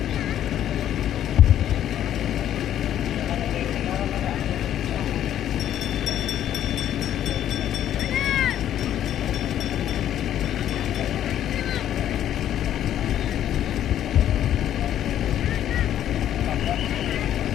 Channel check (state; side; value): quieter; right; 11.1 dB